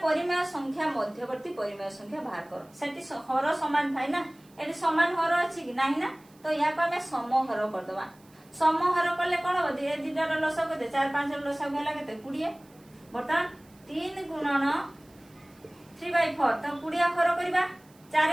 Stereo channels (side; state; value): right; noise; hiss, 29 dB below the sound